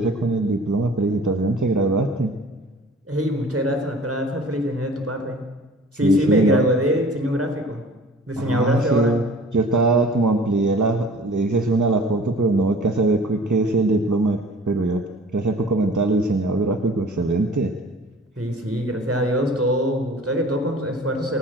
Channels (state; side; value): normal; both; correlation 0.46